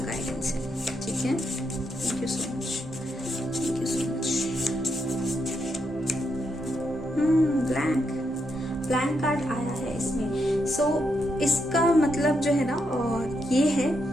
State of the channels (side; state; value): both; normal; correlation 0.81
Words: है, ठीक है? Thank you so much, thank you so much. Blank card आया है इसमें। सो इसका मतलब जो है ना, और ये है